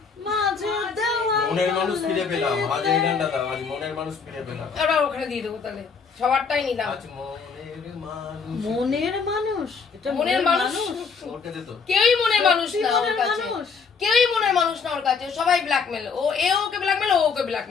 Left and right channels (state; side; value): quieter; right; 5.5 dB